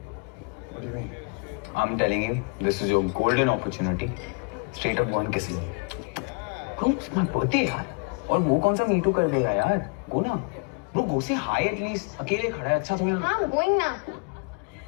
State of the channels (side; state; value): right; quieter; 33.6 dB